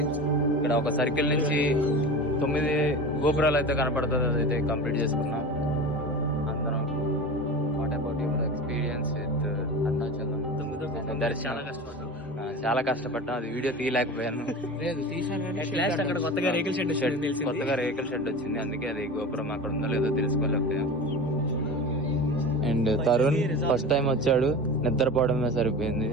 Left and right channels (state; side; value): normal; both; correlation 0.31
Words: ఇక్కడ ఒక సర్కిల్ నుంచి 9 గోపురాలు అయితే కనపడుతుంది, అదైతే కంప్లీట్ చేసుకున్నాం అందరం. What about your experience with Arunachalam? చాలా కష్టపడ్డాం, అది వీడియో తీయలేకపోయాను. కొత్తగా రేకుల షెడ్ వచ్చింది, అందుకే అది గోపురం అక్కడ ఉందో లేదో తెలుసుకోలేకపోయాం. అండ్ తరుణ్ ఫస్ట్ టైం వచ్చాడు, నిద్రపోవడమే సరిపోయింది.